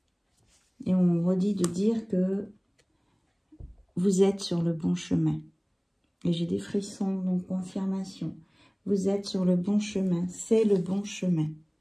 Et on redit de dire que vous êtes sur le bon chemin. Et j'ai des frissons, donc confirmation. vous êtes sur le bon chemin. C'est le bon chemin.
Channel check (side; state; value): both; identical; correlation 1.00